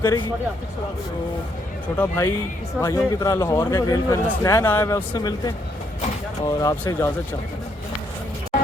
करेगी। तो छोटा भाइयों की तरह लाहौर का रेल फैन हसनैन आया हुआ, उससे मिलते हैं और आपसे इजाज़त चाहते हैं।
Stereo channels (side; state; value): both; normal; correlation 0.73